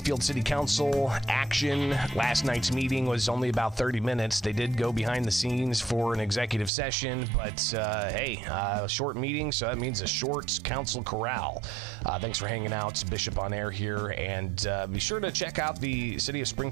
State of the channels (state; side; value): drops out; left; at 6.7 s